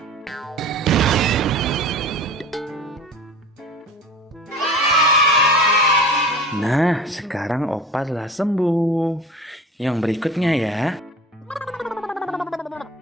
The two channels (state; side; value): normal; both; correlation 0.39